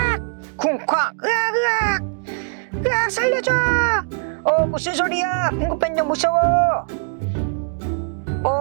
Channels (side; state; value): left; silent; digital silence